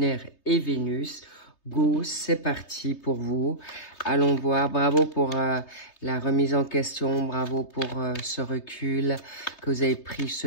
et Vénus, go, c'est parti pour vous. Allons voir, bravo pour la remise en question, bravo pour ce recul, que vous avez pris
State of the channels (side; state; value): right; late; 3.3 ms